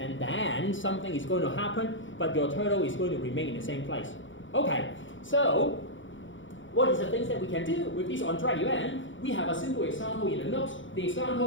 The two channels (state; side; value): late; right; 0.56 ms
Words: then something is going to happen, but your turtle is going to remain in the same place. Okay, so what is the things that we can do with this on-drag event? We have a simple example in the notes. The